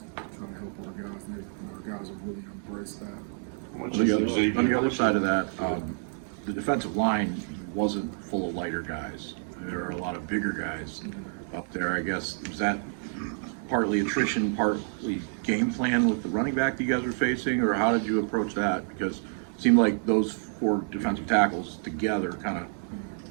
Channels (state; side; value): silent; left; 59 dB below the other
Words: trying to help our guys. And our guys have really embraced that. On the other side of that, the defensive line wasn't full of lighter guys. There are a lot of bigger guys up there. I guess, was that partly attrition, partly game plan with the running back that you guys were facing, or how did you approach that? Because it seemed like those four defensive tackles together kind